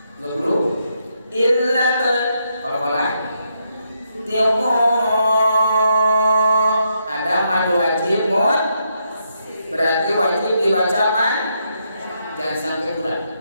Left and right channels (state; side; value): inverted; both; correlation -0.79